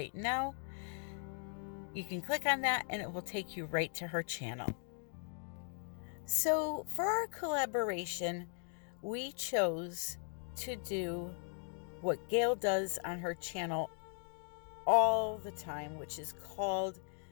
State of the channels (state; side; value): silent; right; 52 dB below the other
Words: now. You can click on that and it will take you right to her channel. So for our collaboration, we chose to do what Gail does on her channel all the time, which is called